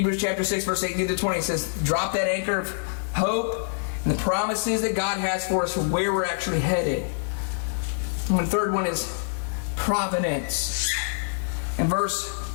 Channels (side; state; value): right; silent; digital silence